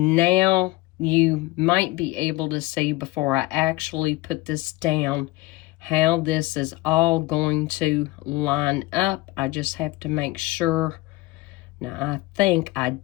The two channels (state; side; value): quieter; right; 20.4 dB